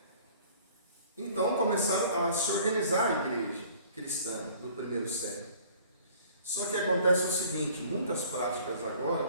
Então começaram a se organizar a igreja cristã do primeiro século. Só que acontece o seguinte, muitas práticas agora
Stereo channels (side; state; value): both; inverted; correlation -0.52